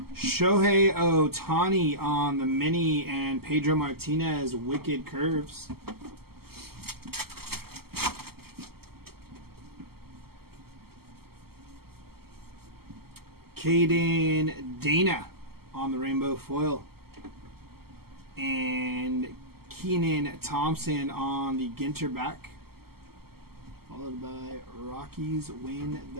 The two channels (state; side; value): late; left; 0.95 ms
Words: Shohei Ohtani on the mini and Pedro Martinez Wicked Curves. Caden Dana on the rainbow foil. And Keenan Thompson on the GINTER back. Followed by Rockies win